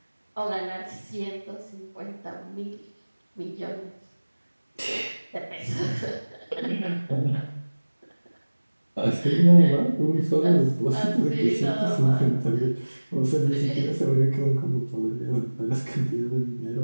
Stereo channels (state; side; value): inverted; both; correlation -1.00